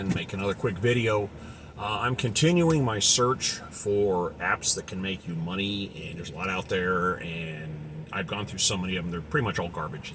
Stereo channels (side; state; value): both; identical; correlation 1.00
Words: make another quick video. I'm continuing my search for apps that can make you money, and there's a lot out there, and I've gone through so many of them, they're pretty much all garbage.